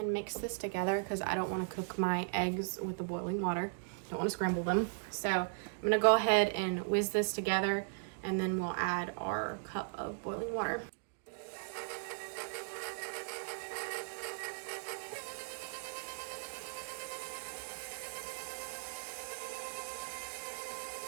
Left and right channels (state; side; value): silent; left; digital silence